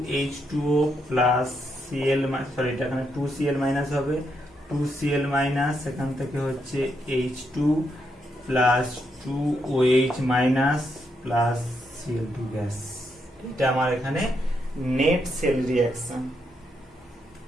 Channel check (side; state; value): both; normal; correlation 0.79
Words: প্লাস Cl, সরি এটা এখানে 2Cl মাইনাস হবে, 2Cl মাইনাস এখান থেকে হচ্ছে H2 plus 2OH minus plus Cl2 gas. এটা আমার এখানে নেট সেল রিঅ্যাকশন।